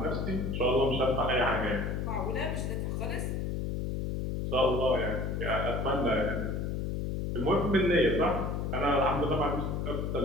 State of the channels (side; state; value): left; noise; hum, 2 dB below the sound